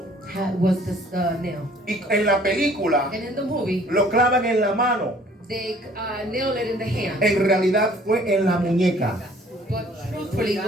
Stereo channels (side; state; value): both; normal; correlation 0.55